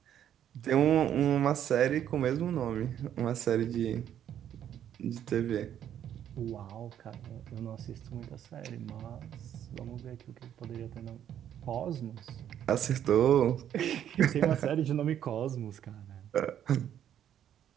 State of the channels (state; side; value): quieter; left; 10.2 dB